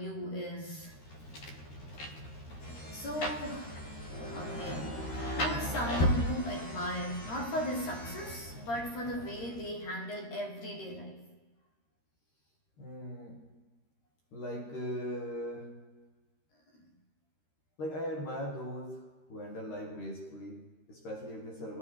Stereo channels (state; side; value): late; right; 13 ms